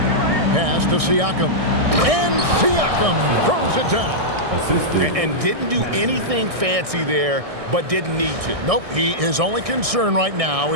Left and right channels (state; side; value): late; left; 1.6 ms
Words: Pass to Siakam. And Siakam throws it down. And didn't do anything fancy there, but didn't need to. Nope, his only concern right now